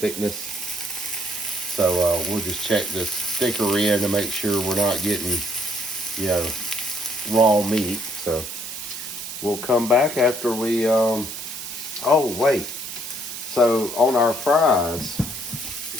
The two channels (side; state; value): right; noise; hiss, 8 dB below the sound